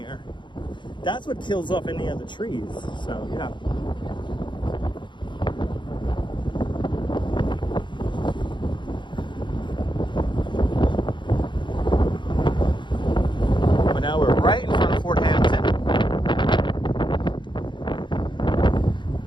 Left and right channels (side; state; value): right; late; 0.23 ms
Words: that's what kills off any of the trees. So, yeah. But now we're right in front of Fort Hampton.